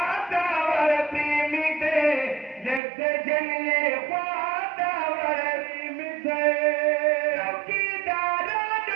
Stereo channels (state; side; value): drops out; left; at 2.8 s